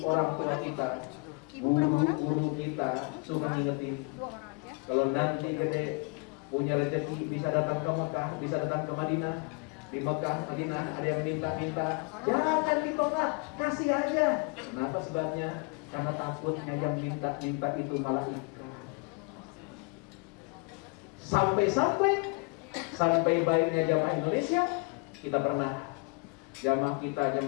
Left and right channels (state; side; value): quieter; right; 32.6 dB